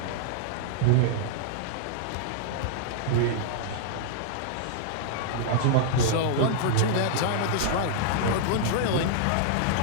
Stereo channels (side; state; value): both; different; correlation -0.01